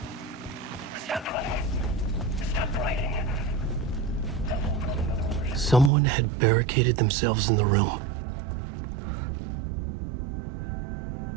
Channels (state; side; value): drops out; left; at 5.9 s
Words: Stop running. Stop writing. Someone had barricaded themselves in the room.